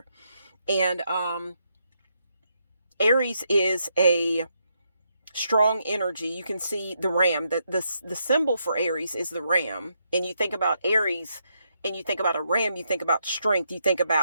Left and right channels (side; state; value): both; inverted; correlation -0.78